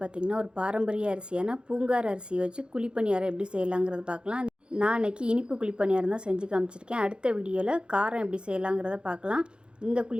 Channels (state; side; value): late; left; 0.052 ms